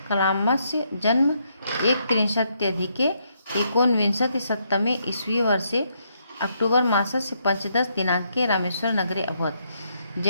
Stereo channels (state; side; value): inverted; both; correlation -0.76